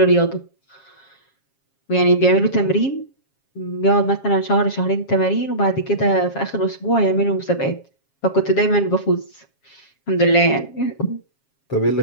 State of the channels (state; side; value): late; right; 7.3 ms